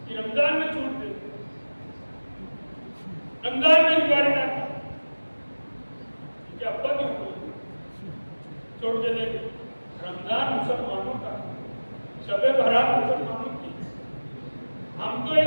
कि रमजान में छूट दे, रमजान में इंक्वायरी ना की, क्या पद छोड़ दे दे। रमजान मुसलमानों का, शबे बारात मुसलमानों की। हम तो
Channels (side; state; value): both; inverted; correlation -1.00